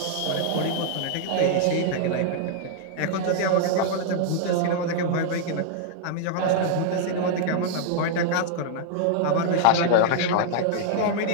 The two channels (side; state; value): both; different; correlation -0.01